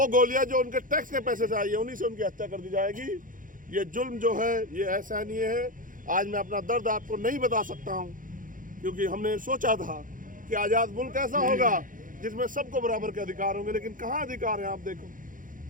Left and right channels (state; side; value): late; left; 0.39 ms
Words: गोलियां जो उनके टैक्स के पैसे से आई है, उन्हीं से उनकी हत्या कर दी जाएगी। ये जुल्म जो है ये असहनीय है। आज मैं अपना दर्द आपको नहीं बता सकता हूँ, क्योंकि हमने सोचा था कि आज़ाद मुल्क ऐसा होगा जिसमें सबको बराबर के अधिकार होंगे, लेकिन कहाँ अधिकार है आप देखो।